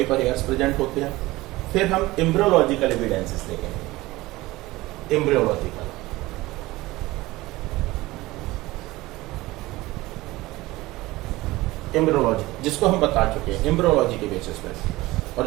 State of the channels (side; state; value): left; quieter; 19.3 dB